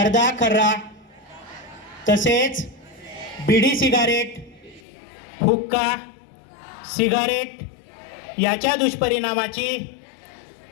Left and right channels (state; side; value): drops out; right; at 4.8 s